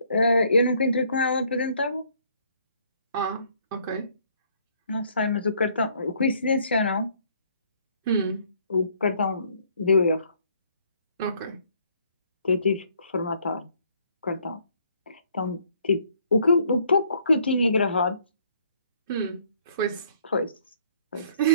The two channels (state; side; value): inverted; both; correlation -0.64